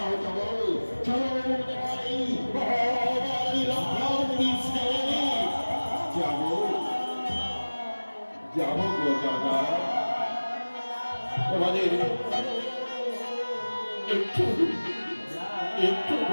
চলো চলো যাবো যাবো গো দাদা, তোমাদের একটু একটু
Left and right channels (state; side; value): inverted; both; correlation -1.00